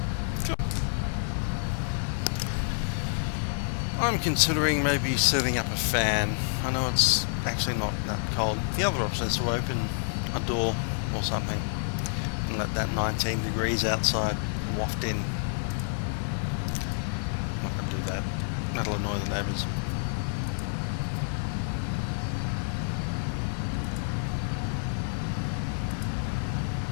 Cool. I'm considering maybe setting up a fan. I know it's actually not that cold. The other option is to open a door or something and let that 19 degrees outside waft in. I'm not going to do that. That'll annoy the neighbours.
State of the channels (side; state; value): right; silent; 56 dB below the other